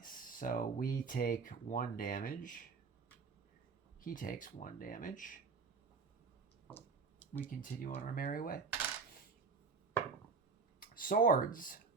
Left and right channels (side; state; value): left; quieter; 4.9 dB